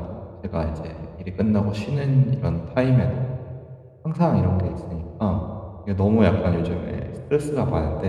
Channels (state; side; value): identical; both; correlation 1.00